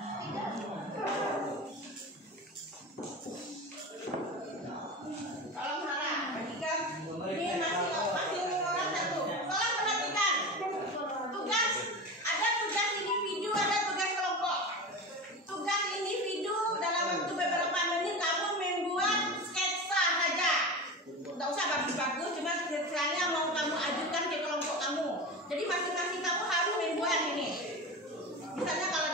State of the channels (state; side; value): normal; both; correlation 0.27